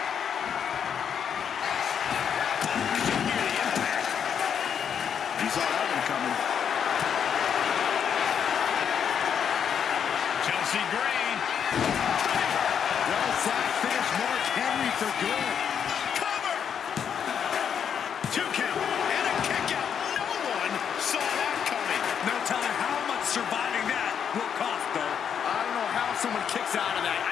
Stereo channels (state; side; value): quieter; right; 7.9 dB